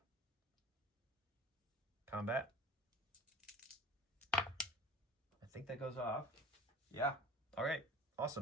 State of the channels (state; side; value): normal; both; correlation 0.39